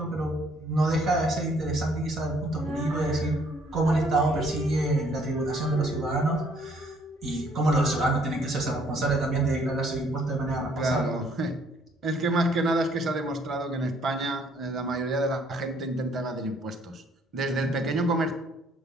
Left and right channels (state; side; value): normal; both; correlation 0.64